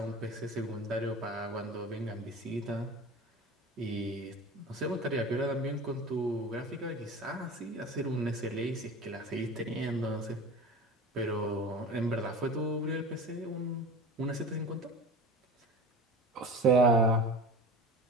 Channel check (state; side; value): normal; both; correlation 0.35